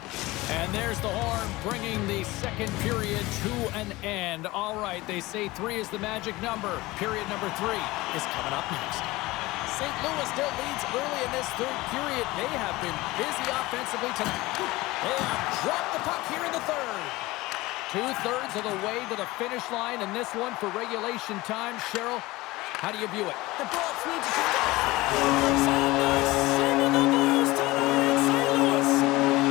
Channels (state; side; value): quieter; right; 20.1 dB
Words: And there's the horn, bringing the second period to an end. All right, they say 3 is the magic number. Period number 3 is coming up next. St. Louis still leads early in this third period. They have been busy offensively tonight. They have dropped the puck here in the third. 2/3 of the way to the finish line in this one for regulation time. Cheryl, how do you view it? The Bolts need to... Sending the Blues tonight in St. Louis.